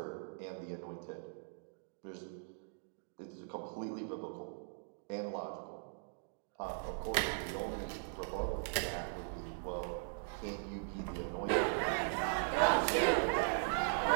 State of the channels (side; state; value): left; silent; digital silence